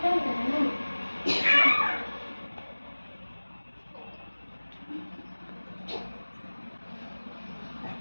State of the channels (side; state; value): both; inverted; correlation -1.00